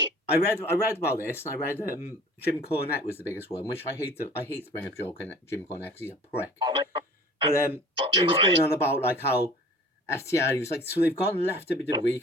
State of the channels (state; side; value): normal; both; correlation 0.46